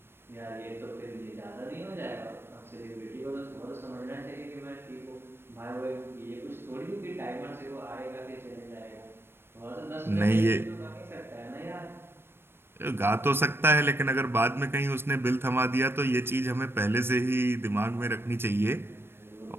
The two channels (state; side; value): late; left; 0.11 ms